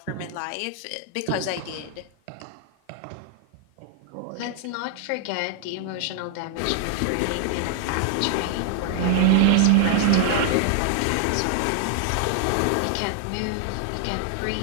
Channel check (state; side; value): different; both; correlation 0.00